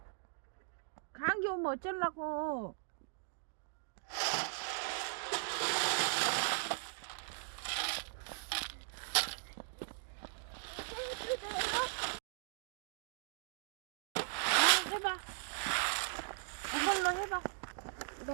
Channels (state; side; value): silent; left; digital silence